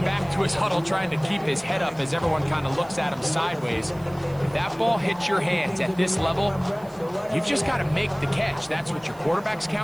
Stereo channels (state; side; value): noise; right; hiss, 26 dB below the sound